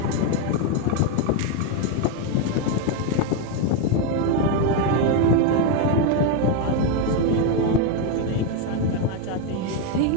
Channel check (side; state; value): both; different; correlation 0.02